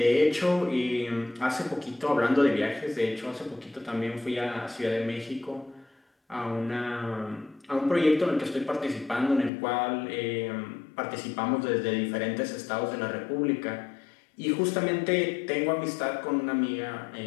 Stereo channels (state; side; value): drops out; right; at 9.5 s